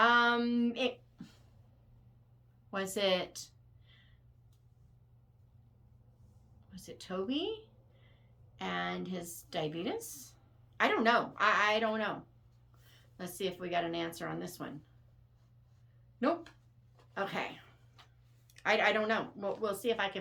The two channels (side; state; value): both; identical; correlation 1.00